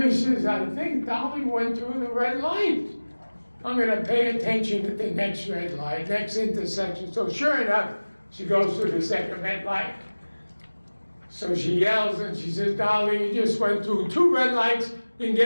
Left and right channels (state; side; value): inverted; both; correlation -1.00